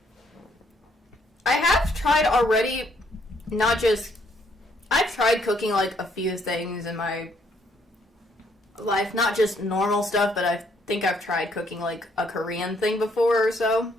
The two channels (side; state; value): both; normal; correlation 0.69